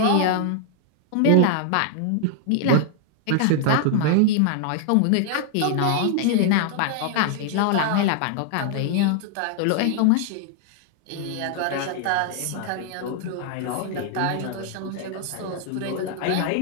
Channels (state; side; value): different; both; correlation 0.00